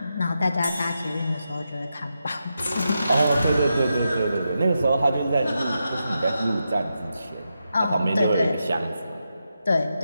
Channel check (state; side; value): inverted; both; correlation -0.87